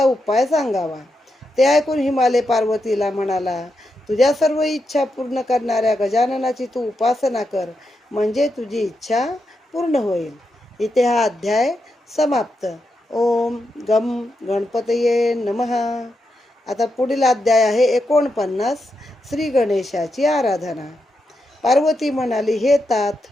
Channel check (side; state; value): both; normal; correlation 0.85